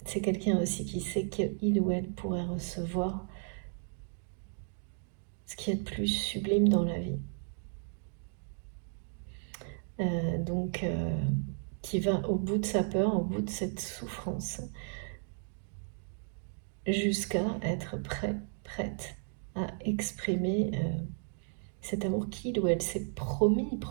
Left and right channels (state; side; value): silent; left; 55 dB below the other